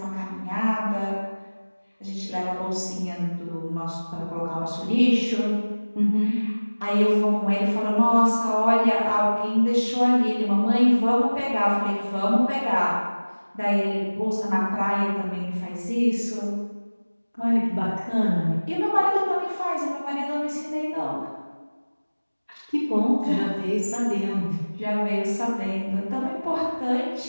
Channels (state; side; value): inverted; both; correlation -1.00